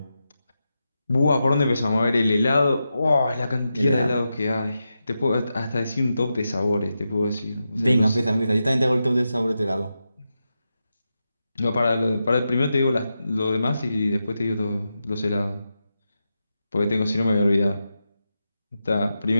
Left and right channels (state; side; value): inverted; both; correlation -0.89